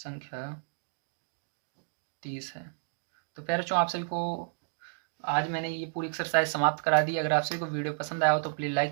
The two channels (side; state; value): left; silent; digital silence